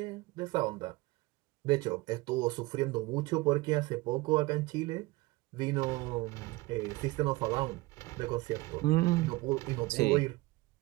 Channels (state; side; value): quieter; left; 21.3 dB